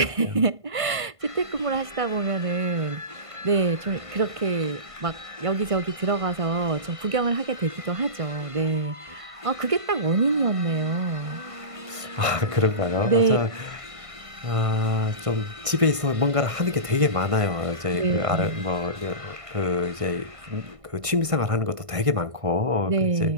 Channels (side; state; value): left; late; 1.5 ms